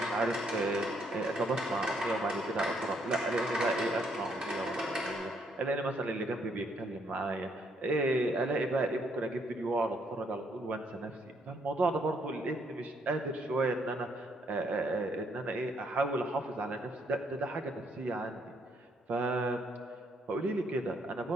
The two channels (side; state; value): both; normal; correlation 0.71